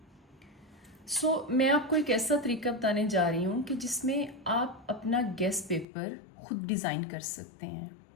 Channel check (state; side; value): drops out; right; at 5.9 s